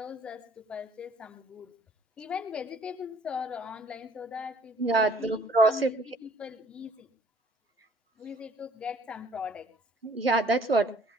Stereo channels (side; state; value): both; normal; correlation 0.57